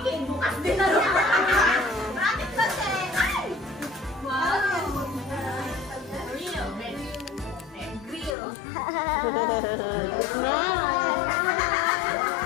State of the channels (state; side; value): drops out; right; at 8.3 s